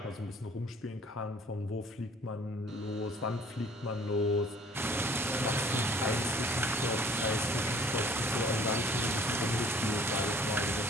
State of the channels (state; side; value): normal; both; correlation 0.54